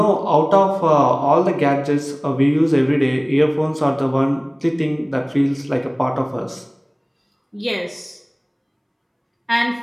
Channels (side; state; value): both; identical; correlation 1.00